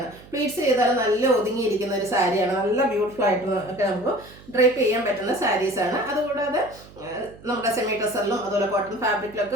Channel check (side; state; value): right; noise; hum, 21 dB below the sound